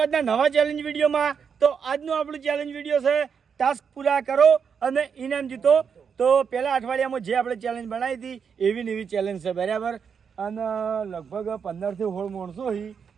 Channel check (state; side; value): quieter; left; 6.7 dB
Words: આજના નવા ચેલેન્જ વિડીયોમાં. તો આજનું આપણું ચેલેન્જ વિડીયો છે ટાસ્ક પૂરા કરો અને ઇનામ જીતો. તો પહેલા અઠવાડિયામાં જે આપણે ચેલેન્જ બનાવી હતી એવી ને એવી ચેલેન્જ છે, બરાબર. અને લગભગ 15 થી 16 માણસો હી.